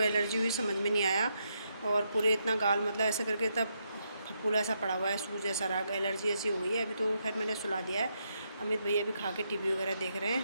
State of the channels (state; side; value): inverted; both; correlation -0.80